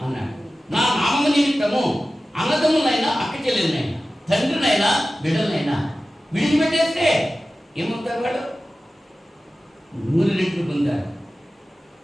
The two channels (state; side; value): normal; both; correlation 0.95